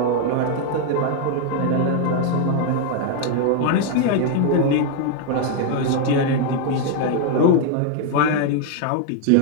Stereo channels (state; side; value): different; both; correlation 0.00